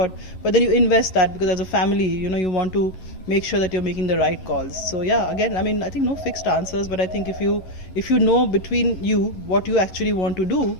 But then you invest that because as a family, you want to make sure that you're making the right calls. So yeah, again, I think no fixed answers, but I think if you know between you what you actually want to do,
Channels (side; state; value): right; late; 11 ms